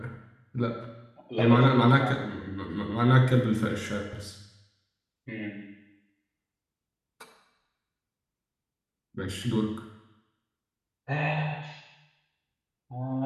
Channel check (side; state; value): both; identical; correlation 1.00